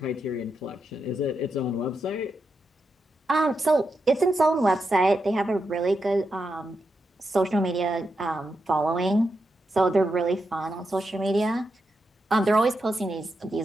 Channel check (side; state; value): both; normal; correlation 0.85